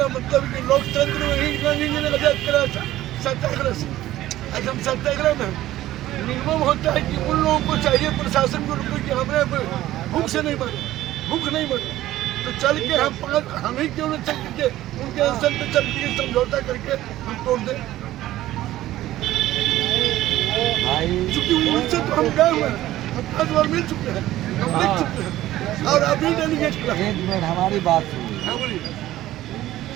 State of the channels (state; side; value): quieter; left; 14.8 dB